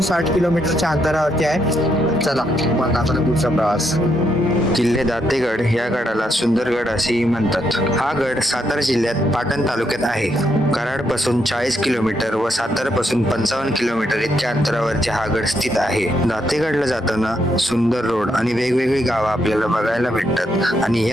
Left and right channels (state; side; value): normal; both; correlation 0.78